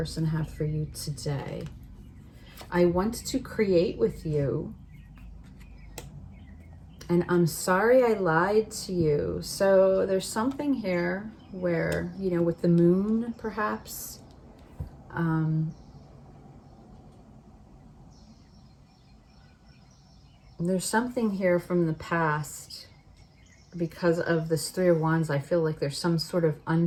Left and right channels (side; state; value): both; identical; correlation 1.00